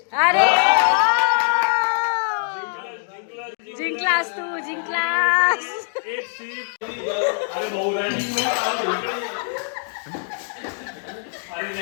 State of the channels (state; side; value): silent; right; 61 dB below the other